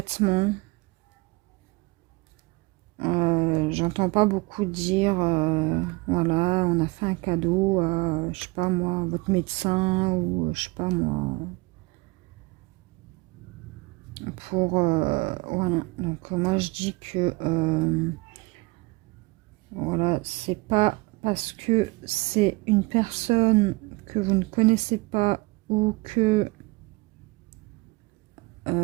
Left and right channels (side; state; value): left; quieter; 24.2 dB